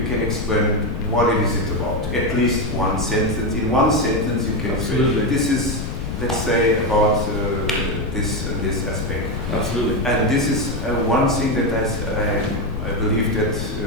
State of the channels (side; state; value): left; noise; rumble, 5 dB below the sound